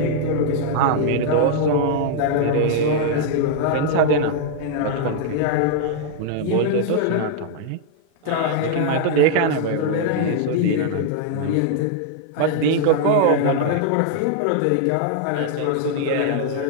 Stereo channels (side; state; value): both; different; correlation -0.01